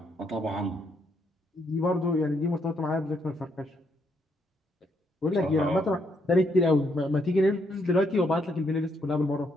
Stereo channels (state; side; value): normal; both; correlation 0.74